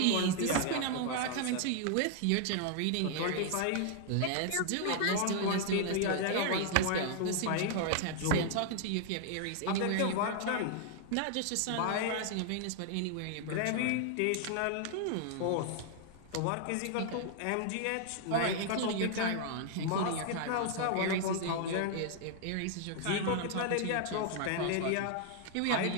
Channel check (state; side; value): different; both; correlation 0.00